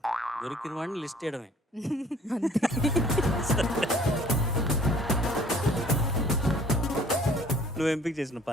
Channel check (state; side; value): normal; both; correlation 0.54